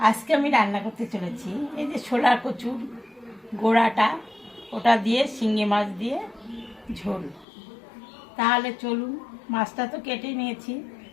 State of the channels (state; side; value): drops out; right; at 7.5 s